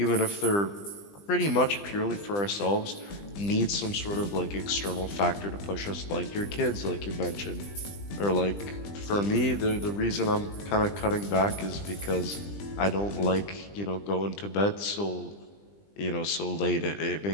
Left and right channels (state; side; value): late; right; 20 ms